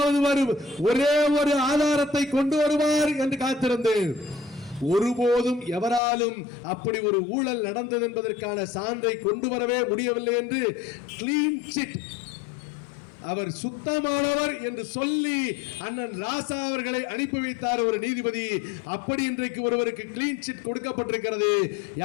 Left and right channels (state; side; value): drops out; right; at 6.0 s